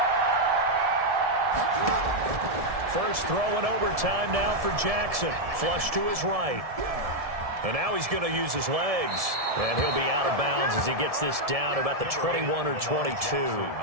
First throw in overtime now for Jackson. Flush to his right. And now he's going to use his legs. And he'll be out of bounds as he gets this down about the 21 or 22.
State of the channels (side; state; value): left; late; 1.7 ms